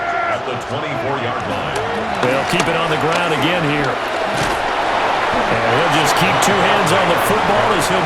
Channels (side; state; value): both; identical; correlation 1.00